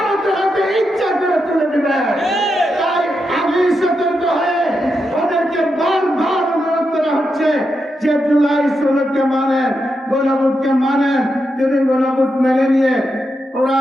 হাতে ইচ্ছা করে তুলে দিবে। তাই আমি সতর্ক হয়ে ওদেরকে বারবার অনুরোধ করা হচ্ছে যে জুলাই সনদকে মানেন, গণভোটকে মানেন। যদি গণভোট মেনে নিয়ে ওরা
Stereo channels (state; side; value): normal; both; correlation 0.85